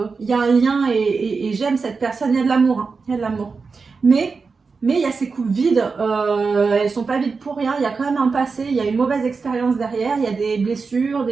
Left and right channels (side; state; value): left; quieter; 4.7 dB